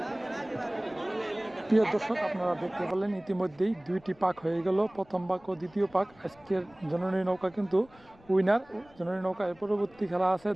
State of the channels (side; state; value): left; noise; rumble, 27 dB below the sound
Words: প্রিয় দর্শক, আপনারা দেখতে পেলেন ইতিমধ্যেই দুইটি পাক হয়ে গেল, প্রথম পাক ও দ্বিতীয় পাক। আজকের জননী নৌকা কিন্তু উইনার। জননী নৌকা এর পরবর্তী খেলা আছে